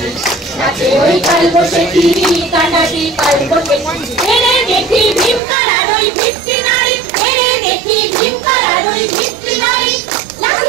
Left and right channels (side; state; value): left; drops out; at 5.4 s